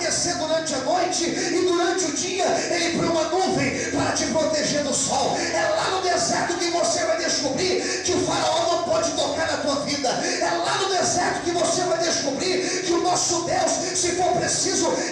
durante a noite, e durante o dia Ele põe uma nuvem para te proteger do sol. É lá no deserto que você vai descobrir que o faraó não pode tocar na tua vida. É lá no deserto que você vai descobrir que o nosso Deus, se for preciso,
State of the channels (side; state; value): both; identical; correlation 1.00